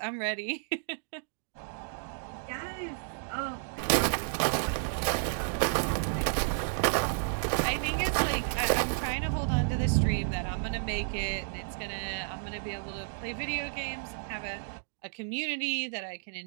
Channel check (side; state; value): left; silent; digital silence